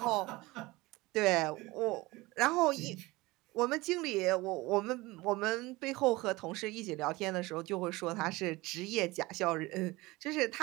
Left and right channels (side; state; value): left; quieter; 21.2 dB